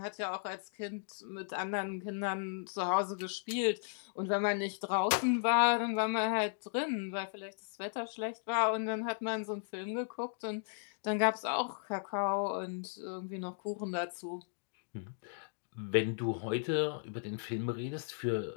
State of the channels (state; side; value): silent; right; digital silence